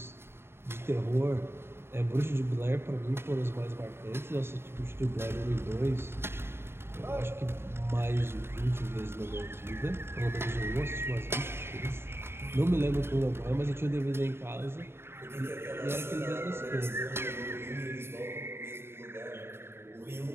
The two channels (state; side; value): late; left; 0.12 ms